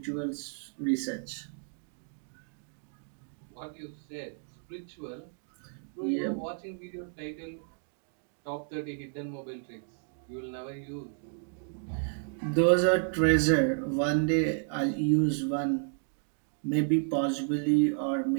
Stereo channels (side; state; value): left; silent; 57 dB below the other